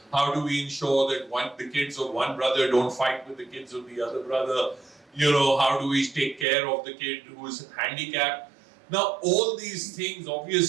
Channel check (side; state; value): left; drops out; at 6.5 s